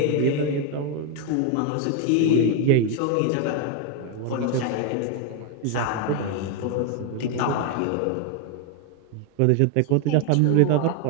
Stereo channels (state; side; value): different; both; correlation 0.01